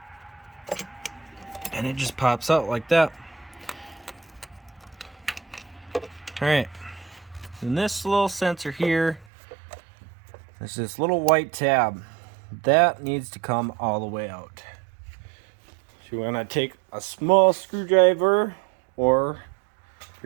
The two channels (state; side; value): drops out; left; at 9.2 s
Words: And it just pops out like that. Alright, and this little sensor here, there's this little white tab. That needs to come all the way out. So you want to take a small screwdriver, or if